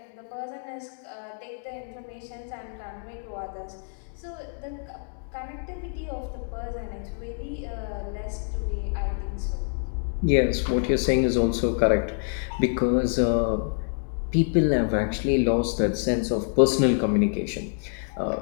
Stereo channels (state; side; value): silent; right; 60 dB below the other